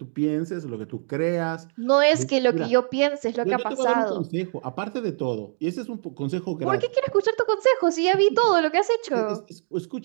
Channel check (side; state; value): left; silent; 63 dB below the other